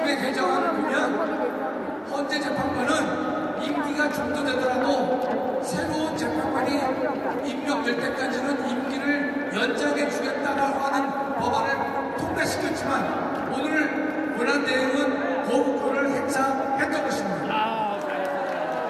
개정안을 보면 헌재 재판관은 임기가 중도되더라도 새로운 재판관이 임명될 때까지는 임기를 연장해 주겠다라고 하는 법안을 통과시켰지만 오늘 권한대행은 거부권을 행사했던 것입니다.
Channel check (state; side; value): identical; both; correlation 1.00